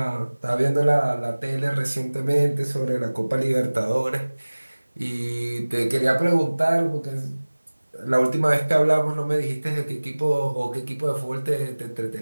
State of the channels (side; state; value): both; inverted; correlation -1.00